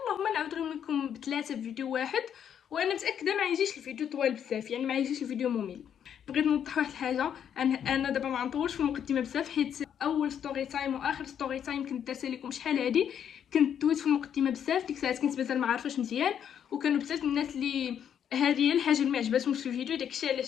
نعاود لكم بثلاثه في فيديو واحد. وانا متاكده ما يجيش الفيديو طوال بزاف، يعني ما يجيش الفيديو ممل. بغيت نوضح واحد الحاجه، انا دابا ما نطولش في المقدمه بزاف، حيت اول ستوري تايم واخر ستوري تايم كنت دارتها لكم شحال هادي كنت دويت في المقدمه بزاف. ديك الساعات كنت مازال ما عارفاش مزيان، وكانوا بزاف الناس اللي هذه هي الحاجه اللي ما عجباتهمش في الفيديو. داكشي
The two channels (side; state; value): right; quieter; 8.9 dB